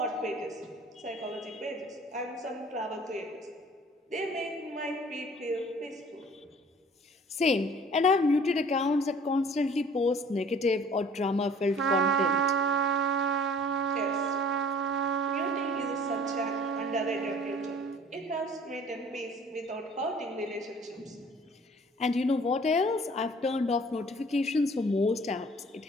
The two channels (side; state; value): both; normal; correlation 0.51